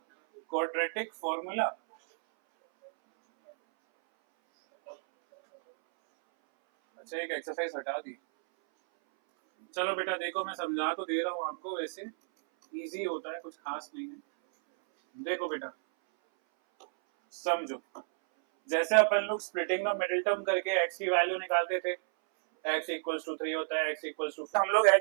क्वाड्रेटिक फॉर्मूला। अच्छा एक एक्सरसाइज हटा दी। चलो बेटा देखो मैं समझा तो दे रहा हूँ आपको, वैसे इजी होता है, कुछ खास नहीं है। देखो बेटा समझो, जैसे अपन लोग स्प्लिटिंग द मिडिल टर्म करके x की वैल्यू निकालते थे, x इक्वल्स टू 3 होता है, x इक्वल्स टू, हम लोग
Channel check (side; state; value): left; silent; 57 dB below the other